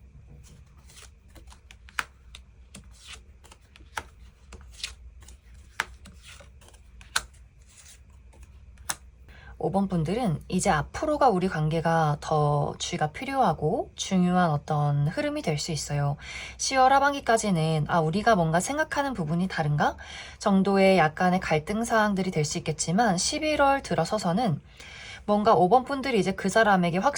5번 분들은 이제 앞으로가 우리 관계가 더 주의가 필요하고 중요한 어떤 흐름이 될 수 있어요. 10월 하반기까지는 우리가 뭔가 생각하는 부분이 다른가? 정도의 약간의 갈등 사항들이 될 수 있겠지만 11월 들어서서는 뭔가 5번 분들이 이제 그 사람에게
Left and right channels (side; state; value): both; identical; correlation 1.00